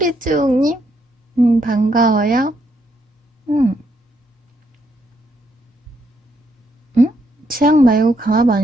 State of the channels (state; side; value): normal; both; correlation 0.75